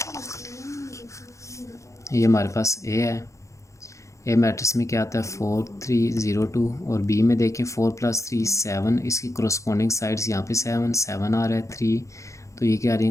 ये हमारे पास ए है। ए मैट्रिक्स में क्या आता है? 4 3 0 2, और बी में देखें 4 + 3 7। इसकी कोरस्पॉन्डिंग साइड्स यहाँ पे 7 7 आ रहा है 3, तो ये क्या आ रही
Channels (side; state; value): right; late; 0.15 ms